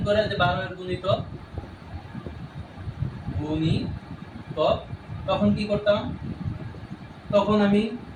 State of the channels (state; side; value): identical; both; correlation 1.00